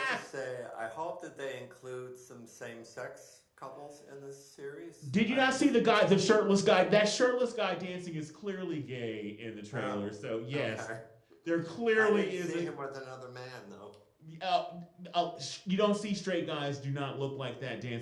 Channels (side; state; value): both; identical; correlation 1.00